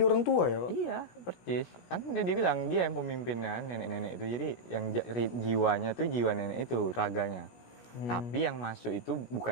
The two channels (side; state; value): right; late; 17 ms